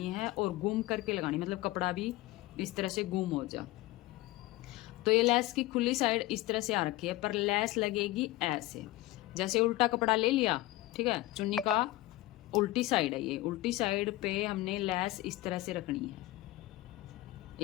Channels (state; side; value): quieter; right; 18.0 dB